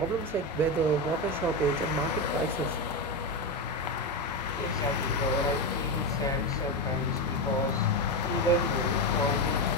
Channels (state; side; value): normal; both; correlation 0.13